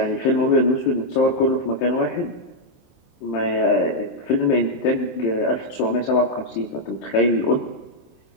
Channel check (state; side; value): late; right; 23 ms